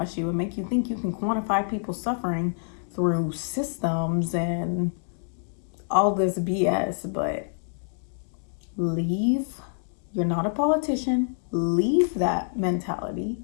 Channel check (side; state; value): right; silent; digital silence